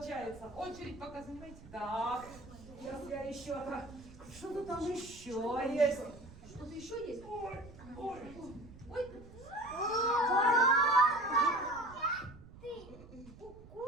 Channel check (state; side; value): noise; right; rumble, 18 dB below the sound